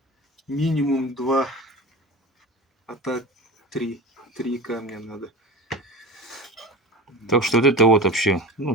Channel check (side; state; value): both; normal; correlation 0.32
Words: Минимум 2, а так 3. 3 камня надо. Так что вот это вот вообще,